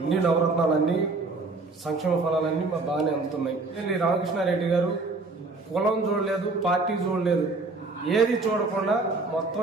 నవరత్నాలన్నీ సంక్షేమ ఫలాలన్నీ బాగానే అందుతున్నాయి. రామకృష్ణారెడ్డి గారు కులం చూడలేదు, పార్టీ చూడలేదు, ఏది చూడకుండా మొత్తం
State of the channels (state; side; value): quieter; left; 3.6 dB